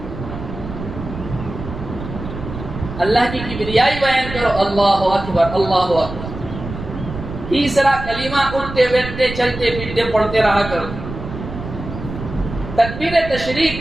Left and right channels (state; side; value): noise; right; rumble, 9 dB below the sound